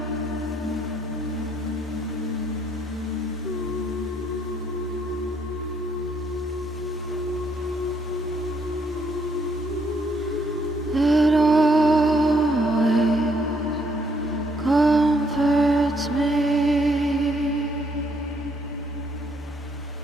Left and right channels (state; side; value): normal; both; correlation 0.71